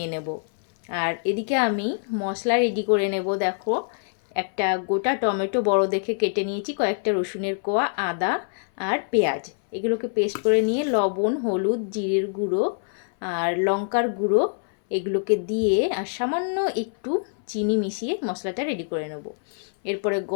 নেব। আর এদিকে আমি মশলা রেডি করে নেব। দেখো, একটা গোটা টমেটো বড় দেখে কেটে নিয়েছি, কয়েকটা রসুনের কোয়া, আদা আর পেঁয়াজ, এগুলোকে পেস্ট করে নিয়ে লবণ, হলুদ, জিরের গুঁড়ো আর লঙ্কার গুঁড়ো এগুলোকে দিয়ে আর সামান্য একটু চিনি মিশিয়ে মশলাটা রেডি করে নেব। এরপরে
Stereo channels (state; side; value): silent; right; 59 dB below the other